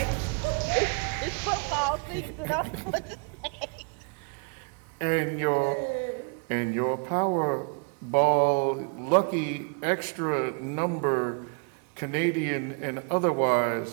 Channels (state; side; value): quieter; left; 36.4 dB